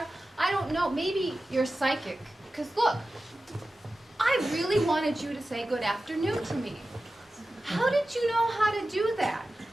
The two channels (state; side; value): normal; both; correlation 0.94